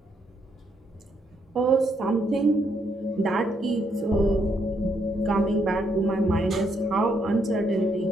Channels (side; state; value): both; normal; correlation 0.75